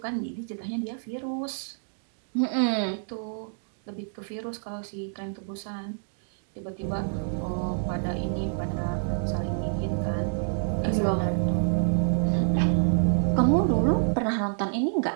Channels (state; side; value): silent; left; digital silence